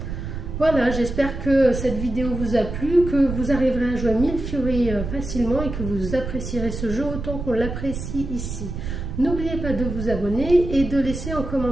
Voilà, j'espère que cette vidéo vous a plu, que vous arriverez à jouer à Milfiori facilement et que vous apprécierez ce jeu autant qu'on l'apprécie ici. N'oubliez pas de vous abonner et de laisser en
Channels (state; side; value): noise; right; rumble, 6 dB below the sound